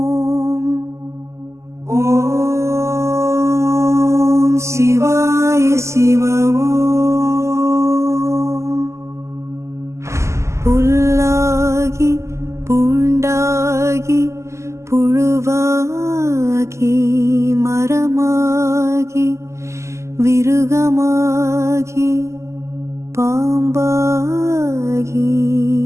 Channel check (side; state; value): left; late; 0.13 ms